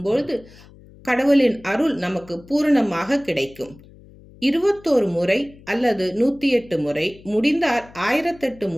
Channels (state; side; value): noise; left; hum, 23 dB below the sound